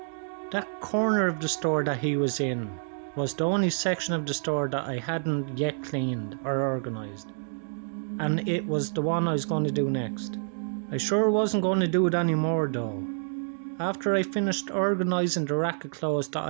That corner of the store that he was in was the only section of the store that I hadn't yet cleaned or organised, and it was the one I was going to do next. I sure wasn't going to do it anymore though. After I finished organising the rack of clothes that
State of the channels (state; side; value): silent; left; digital silence